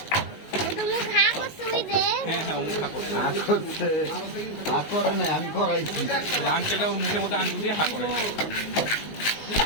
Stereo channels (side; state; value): right; late; 19 ms